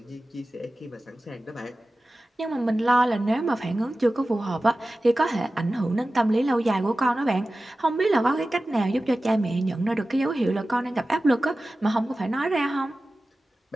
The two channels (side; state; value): both; normal; correlation 0.95